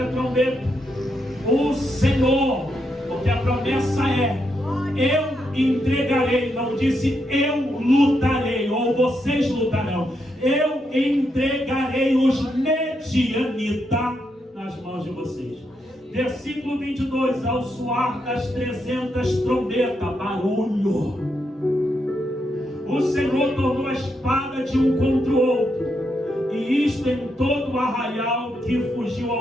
trombetas, o Senhor, porque a promessa é: eu entregarei, não disse eu lutarei, ou vocês lutarão, eu entregarei os medianitas nas mãos de vocês. Versículo 22, ao soar das 300 trombetas, barulho, o Senhor tornou a espada de um contra o outro, e isto em todo o arraial que fugiu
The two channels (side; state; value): both; normal; correlation 0.81